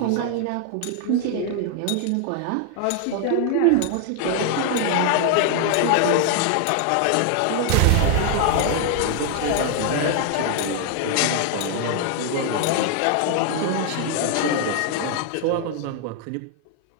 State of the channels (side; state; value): both; different; correlation 0.00